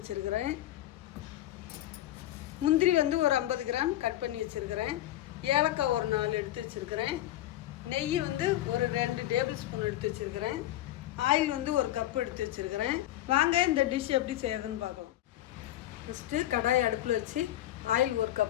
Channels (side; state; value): right; quieter; 14.0 dB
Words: முந்திரி ஒரு 50 கிராம் கட் பண்ணி வச்சுருக்கிறேன். ஏலக்காய் 4 எடுத்து வச்சுருக்கிறேன். நெய் ஒரு 2 டேபிள் ஸ்பூன் எடுத்து வச்சுருக்கிறேன். ஆயில் 1 கப் எடுத்து வச்சுருக்கிறேன். வாங்க இந்த டிஷ் எப்படி செய்யறதுன்னு பார்க்கலாம். ஃபஸ்ட்டு கடாயை அடுப்பில் வச்சு ஆயில் 1